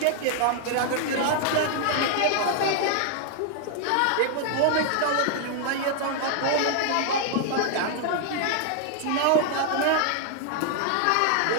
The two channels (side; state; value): both; different; correlation 0.00